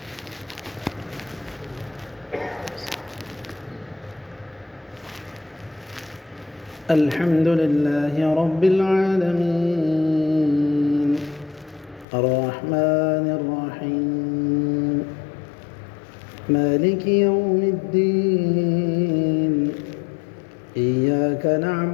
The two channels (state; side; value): drops out; right; at 12.1 s